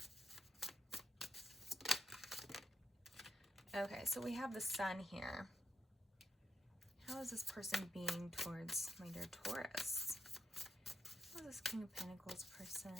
Okay, so we have the Sun here. How is this person being towards my dear Taurus? How is this King of Pentacles person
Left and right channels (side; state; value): both; normal; correlation 0.78